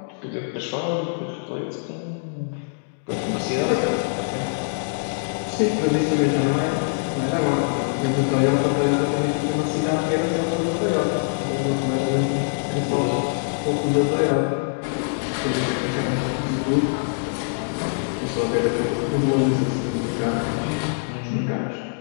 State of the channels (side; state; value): right; silent; digital silence